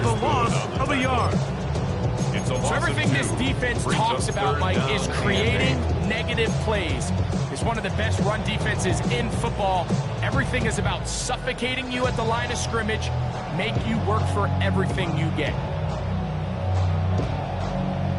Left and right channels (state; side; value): identical; both; correlation 1.00